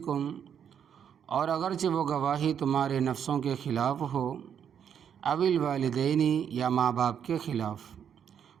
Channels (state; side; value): quieter; left; 8.3 dB